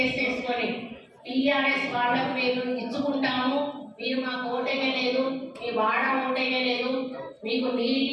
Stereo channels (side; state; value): both; identical; correlation 1.00